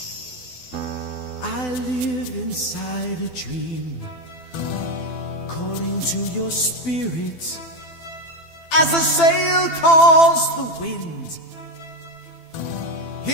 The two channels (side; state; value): right; late; 12 ms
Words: I live inside a dream, calling to your spirit as a sail calls the wind.